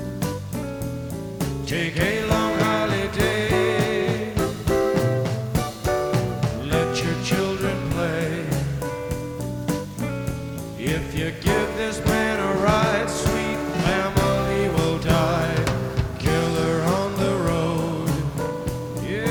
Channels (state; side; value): identical; both; correlation 1.00